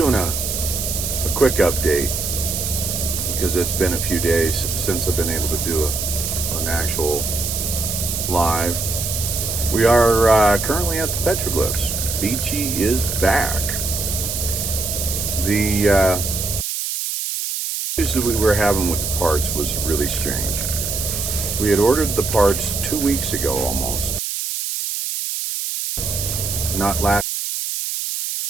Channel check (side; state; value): right; noise; hiss, 3 dB below the sound